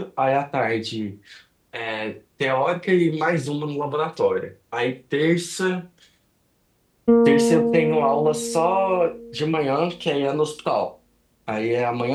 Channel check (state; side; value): identical; both; correlation 1.00